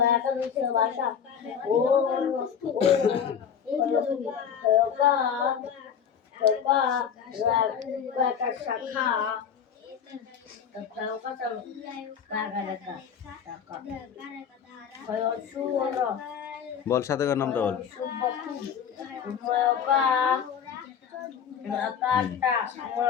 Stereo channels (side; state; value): right; quieter; 7.8 dB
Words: বল, সাথে কার নামটা বল।